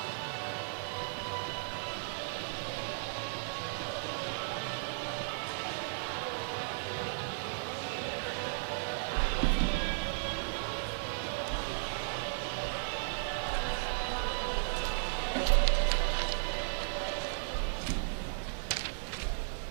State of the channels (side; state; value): left; silent; digital silence